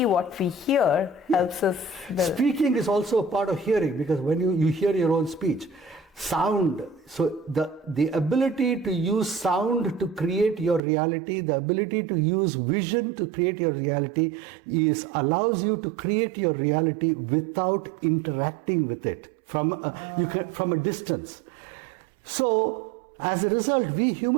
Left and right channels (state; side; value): drops out; left; at 10.8 s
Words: what we hear helps us. Speaking is also a part of hearing, because when you hear your own speech, sound, so the ability to use sound to create your reality, the ability to use vision to create your reality allows you to create your reality without interacting with it from a distance. So as a result, we